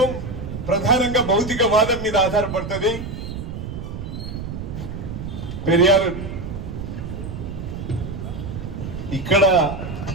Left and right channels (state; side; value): noise; right; rumble, 7 dB below the sound